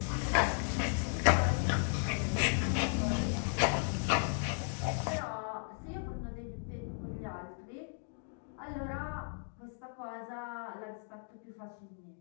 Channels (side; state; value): right; silent; 54 dB below the other